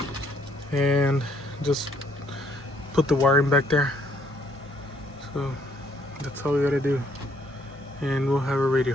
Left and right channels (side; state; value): both; normal; correlation 0.67